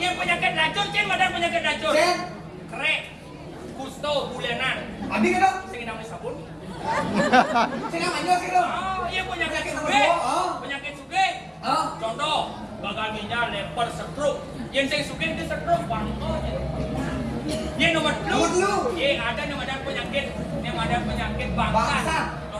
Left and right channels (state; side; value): identical; both; correlation 1.00